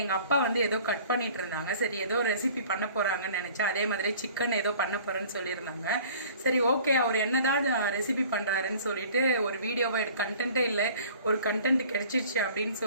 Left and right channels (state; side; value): inverted; both; correlation -0.49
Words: எங்கள் அப்பா வந்து ஏதோ கட் பண்ணிட்டு இருந்தாங்க. சரி ஏதோ ரெசிபி பண்ண போகிறாங்கன்னு நினச்சேன். அதே மாதிரி சிக்கன் ஏதோ பண்ண போகிறேன்னு சொல்லியிருந்தாங்க. சரி ஓகே, அவர் என்னதான் ரெசிபி பண்ணுறாருன்னு சொல்லிட்டு ஒரு வீடியோவை கண்டென்ட்டே இல்லை, ஒரு கண்டென்ட் கிடைச்சிருச்சு அப்படின்னு